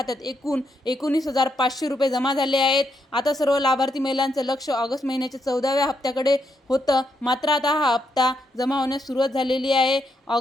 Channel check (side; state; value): both; normal; correlation 0.79